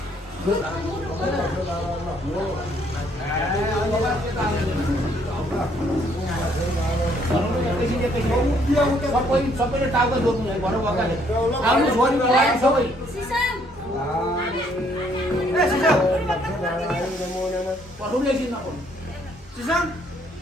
सबैले टाउको जोड्नु है भनौँ वकाले आउनु छोरी बोलायो सबै पढ्नुले किन नपढ्नु सिसम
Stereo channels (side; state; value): both; normal; correlation 0.66